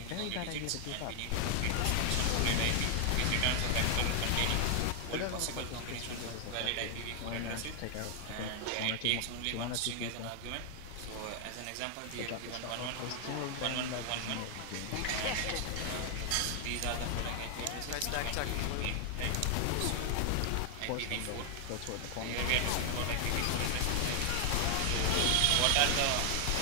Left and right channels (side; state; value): both; different; correlation 0.00